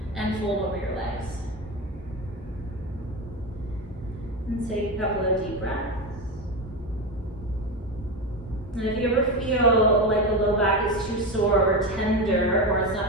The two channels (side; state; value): both; normal; correlation 0.18